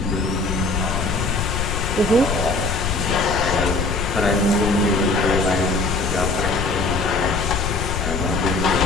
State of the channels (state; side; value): noise; left; rumble, 2 dB below the sound